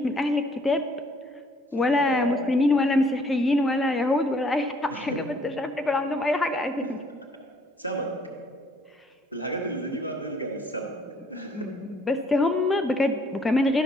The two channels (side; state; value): both; normal; correlation 0.63